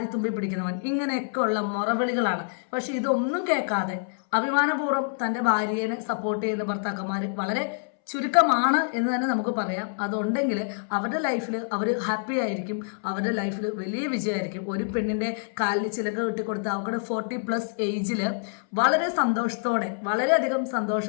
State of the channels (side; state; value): right; silent; 61 dB below the other